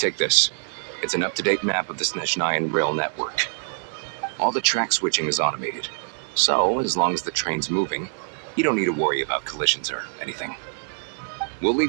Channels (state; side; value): silent; left; 61 dB below the other